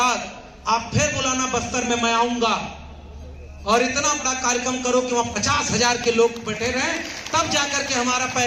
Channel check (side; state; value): both; identical; correlation 1.00